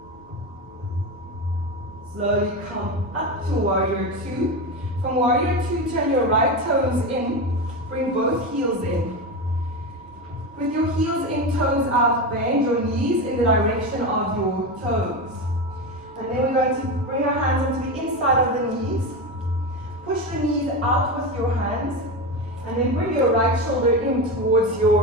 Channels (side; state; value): both; normal; correlation 0.19